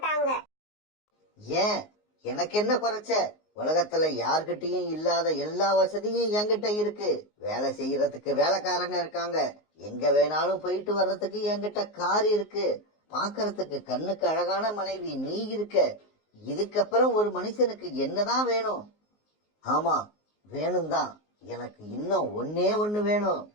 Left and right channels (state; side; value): late; right; 19 ms